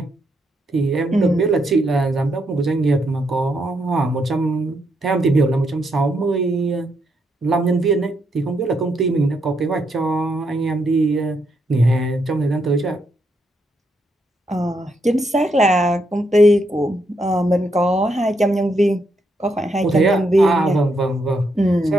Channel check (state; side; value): normal; both; correlation 0.78